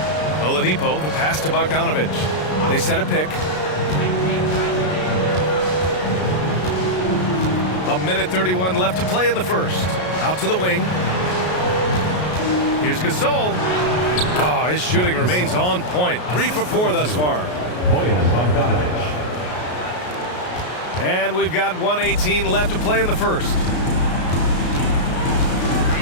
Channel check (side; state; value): right; late; 33 ms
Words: Oladipo, the pass to Bogdanovich. They set a pick. A minute 31 left to play in the first. Out to the wing. Here's Gasol. Oh, his shooting remains on point. 3 for 4 thus far. Bogdanovich. And we've got 1:18 left to play in the first.